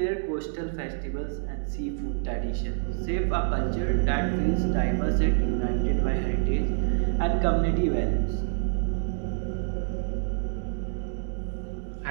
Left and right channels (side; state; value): left; silent; digital silence